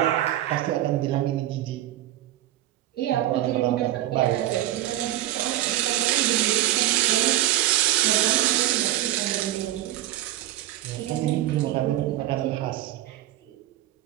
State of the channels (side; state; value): left; quieter; 14.2 dB